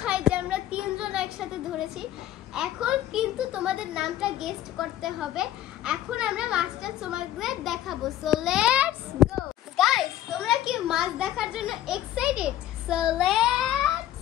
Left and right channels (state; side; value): quieter; right; 12.8 dB